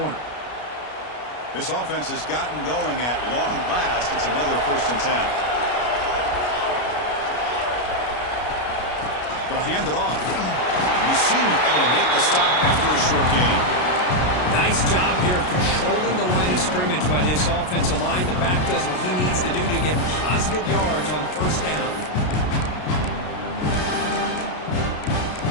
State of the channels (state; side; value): late; right; 33 ms